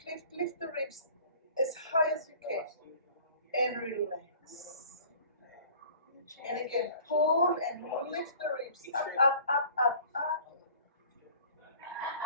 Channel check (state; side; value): inverted; both; correlation -0.48